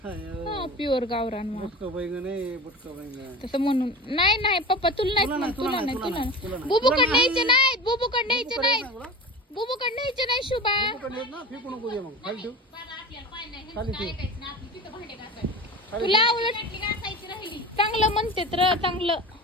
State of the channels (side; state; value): both; normal; correlation 0.33